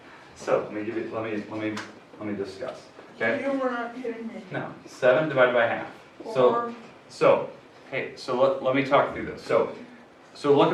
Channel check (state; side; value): identical; both; correlation 1.00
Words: So let me give you, let me discuss. Okay. You were not kidding me. No, 7 divided by half. So, hey, so let me talk through this. So look